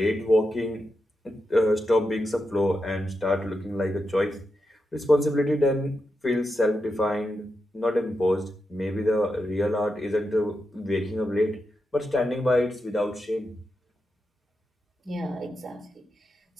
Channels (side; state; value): both; normal; correlation 0.87